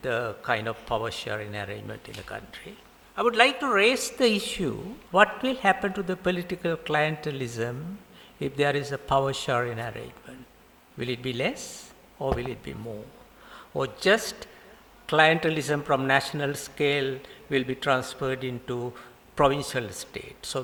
the kind of power sharing arrangement in the country. I would like to raise the issue, what will happen to the political clientelism if there is a power sharing arrangement? Will it be less or will it be more? Or just clientelism from national scale will be transferred into provincial state? So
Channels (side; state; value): both; identical; correlation 1.00